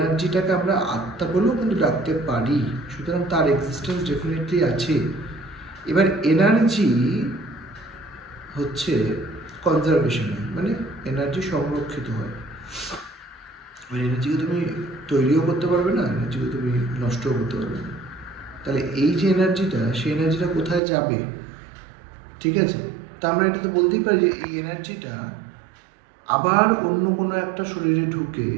আমরা আত্মা বলেও কিন্তু ডাকতে পারি। সুতরাং তার এক্সিস্টেন্স ডেফিনেটলি আছে। এবার এনার্জি হচ্ছে কনজারভেশন, মানে এনার্জি সংরক্ষিত হয়। ওই এনার্জিকে তুমি তৈরিও করতে পারবে না, এনার্জিকে তুমি নষ্টও করতে পারবে না। তাহলে এই যে এনার্জিটা, সেই এনার্জিটা কোথায় যাবে, ঠিক আছে। তা আমরা এটা তো বলতেই পারি যে এই এনার্জিটা আবার অন্য কোনো একটা শরীরে ঢুকে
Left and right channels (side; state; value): left; drops out; at 20.8 s